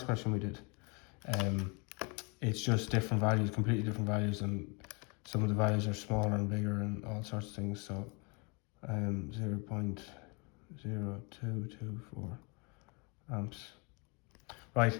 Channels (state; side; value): quieter; right; 31.5 dB